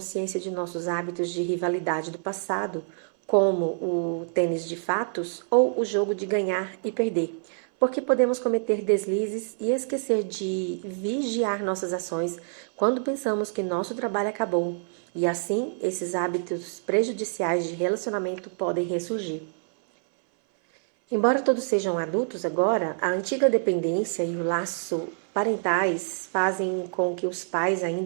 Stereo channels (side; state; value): left; silent; 59 dB below the other